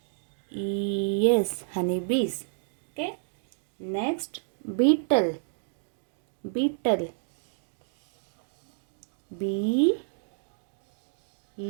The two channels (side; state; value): left; silent; digital silence